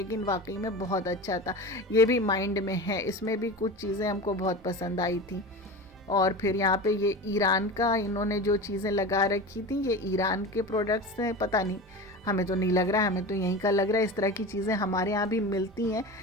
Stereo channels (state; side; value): normal; both; correlation 0.30